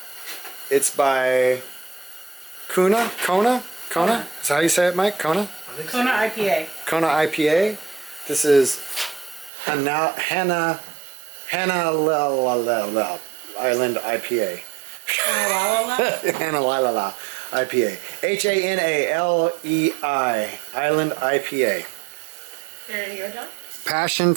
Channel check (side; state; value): left; drops out; at 9.5 s